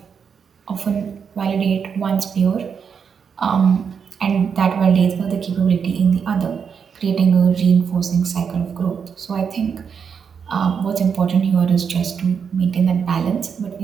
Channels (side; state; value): left; quieter; 6.7 dB